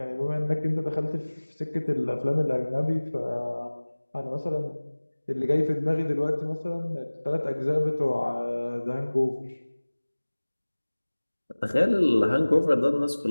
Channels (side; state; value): both; inverted; correlation -1.00